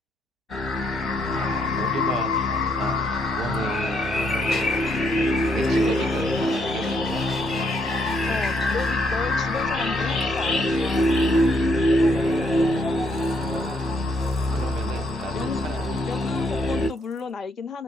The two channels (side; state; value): both; normal; correlation 0.73